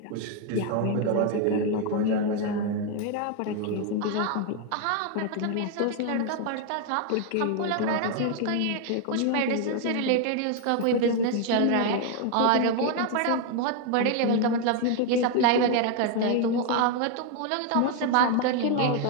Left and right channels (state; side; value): different; both; correlation 0.01